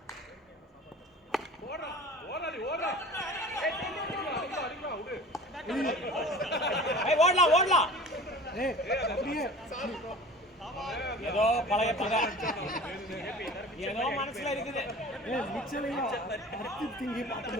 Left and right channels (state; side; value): normal; both; correlation 0.41